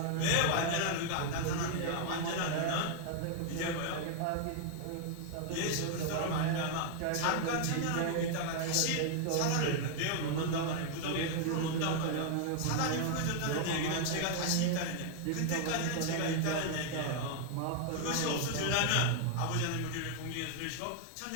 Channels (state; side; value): different; both; correlation 0.00